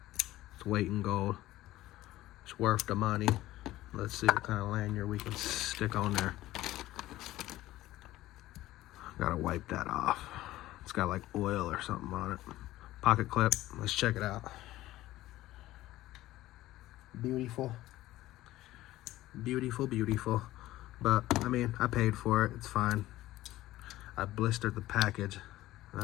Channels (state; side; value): quieter; right; 15.9 dB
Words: its weight in gold. It's worth the money. Let's see what kind of lanyard we can stick on there. Gotta wipe that off. It's got like oil or something on it. Pocket clip. Let's check it out. Beautiful. Beautiful, beautiful. But, I mean, I paid for it. It's fine. I blistered the package.